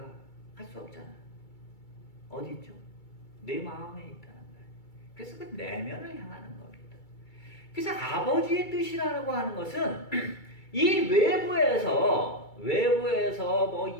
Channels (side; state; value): right; late; 2.3 ms